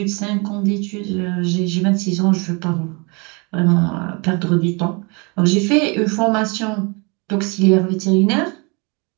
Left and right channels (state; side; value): quieter; left; 30.5 dB